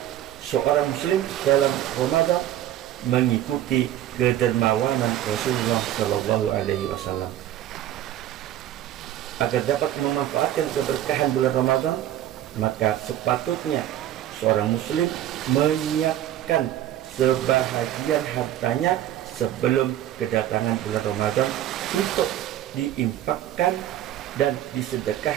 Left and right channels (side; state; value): left; quieter; 12.4 dB